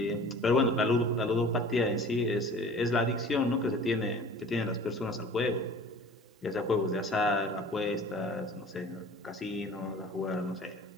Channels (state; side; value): normal; both; correlation 0.44